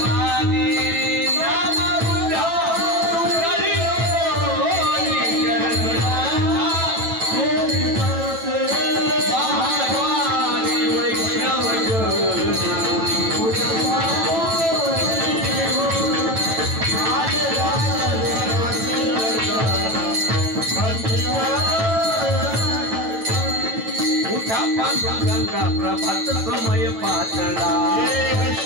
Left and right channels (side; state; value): left; late; 9.1 ms